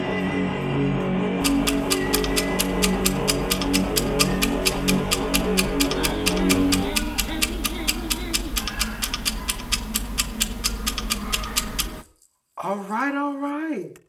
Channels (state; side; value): identical; both; correlation 1.00